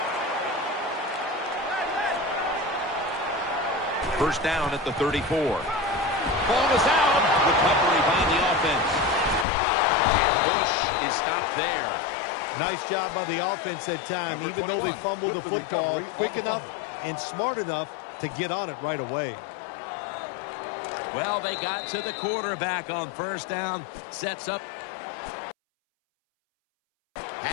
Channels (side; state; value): right; drops out; at 9.5 s